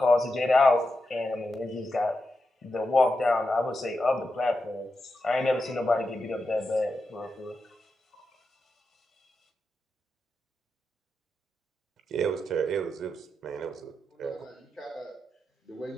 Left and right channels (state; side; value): normal; both; correlation 0.88